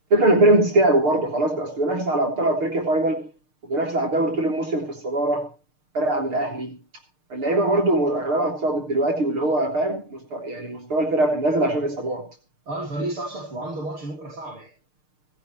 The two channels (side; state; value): left; late; 6.6 ms